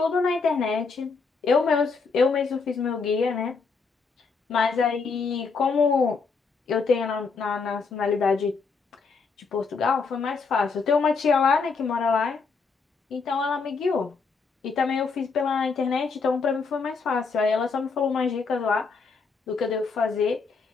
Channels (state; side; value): quieter; right; 4.8 dB